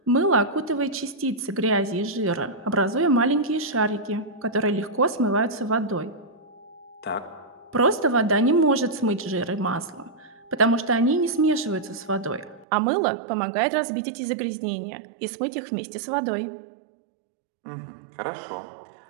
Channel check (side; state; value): left; drops out; at 12.7 s